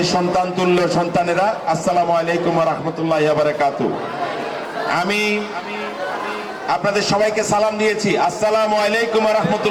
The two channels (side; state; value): both; identical; correlation 1.00